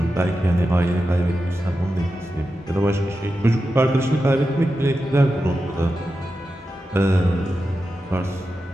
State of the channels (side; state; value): both; normal; correlation 0.91